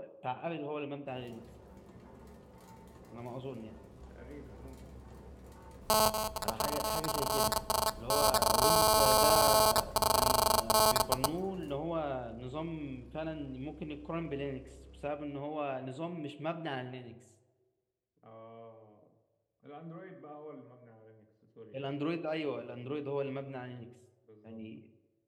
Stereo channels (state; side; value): identical; both; correlation 1.00